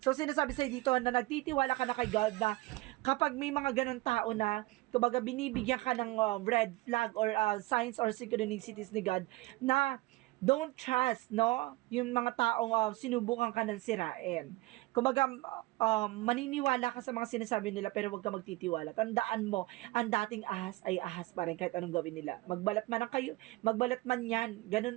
So sinasabi sa'yo dito na nagtitiwala ka na kay God na kapag may mga ganon tao na, kumbaga binibigyan ka ng red flag or signs or synchronicities ni God na don't trust, no? Yung mga taong sinubukan ka ng sirain. Kumbaga, maniniwala ka sa mga sinasabi nila pero huwag ka magtitiwala. Tandaan mo, ang dating ahas ay ahas pa rin kahit anong gawin nila. Magbalat man yan,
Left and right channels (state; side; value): quieter; left; 20.9 dB